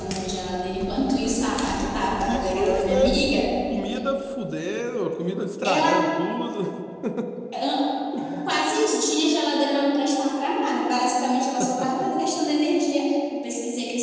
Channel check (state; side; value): identical; both; correlation 1.00